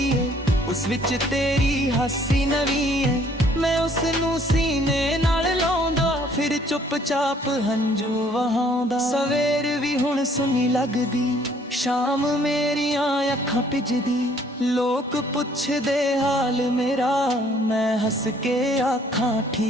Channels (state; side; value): normal; both; correlation 0.61